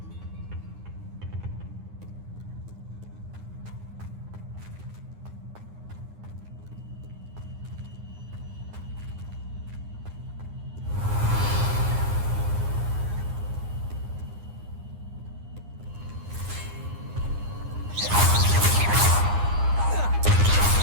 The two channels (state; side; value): late; left; 9.7 ms